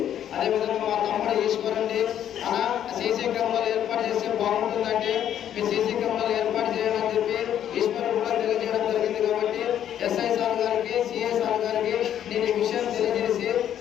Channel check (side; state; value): right; quieter; 10.3 dB